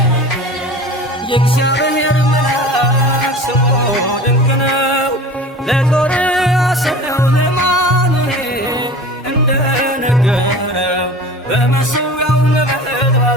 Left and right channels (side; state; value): both; normal; correlation 0.38